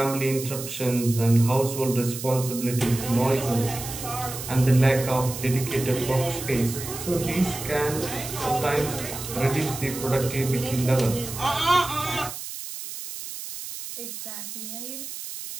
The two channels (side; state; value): right; noise; hiss, 9 dB below the sound